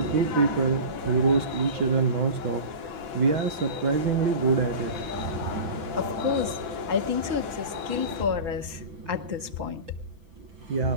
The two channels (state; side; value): late; left; 6.0 ms